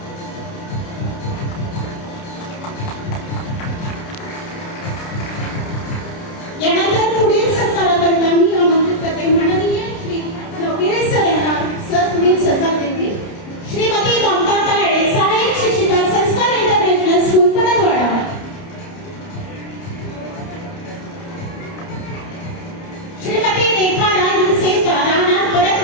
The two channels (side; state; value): right; late; 30 ms